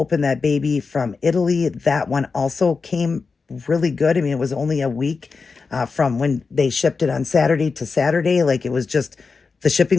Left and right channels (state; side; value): quieter; right; 4.7 dB